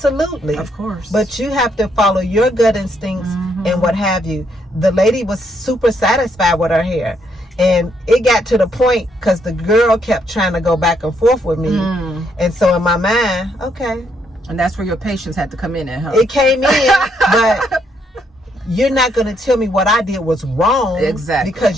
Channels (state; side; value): normal; both; correlation 0.74